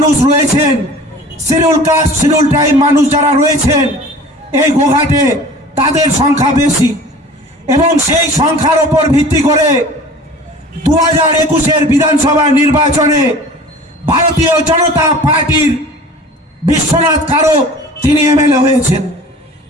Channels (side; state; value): both; normal; correlation 0.43